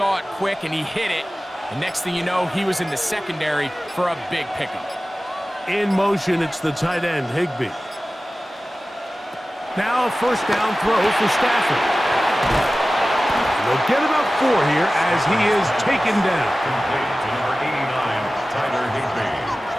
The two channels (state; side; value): normal; both; correlation 0.96